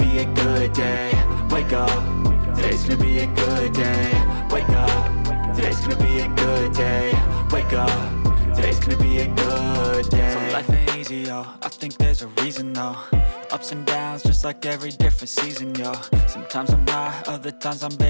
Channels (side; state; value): both; inverted; correlation -1.00